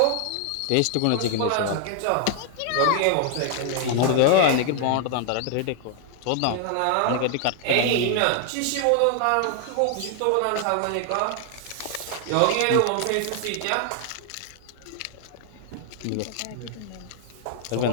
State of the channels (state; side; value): different; both; correlation 0.00